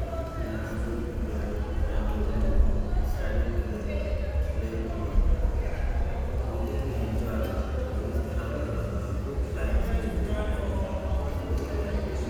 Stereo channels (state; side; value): identical; both; correlation 1.00